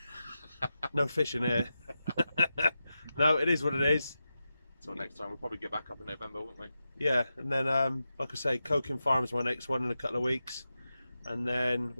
No fishing here. No, it is what it is. Until next time, we'll probably get back up in November, won't we? Yeah, and then like I say, Coking Farm is my next one in a couple of weeks, and then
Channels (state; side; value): inverted; both; correlation -0.90